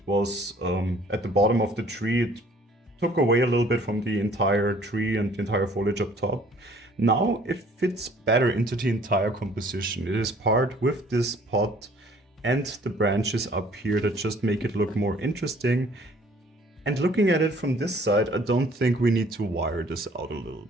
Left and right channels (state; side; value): normal; both; correlation 0.56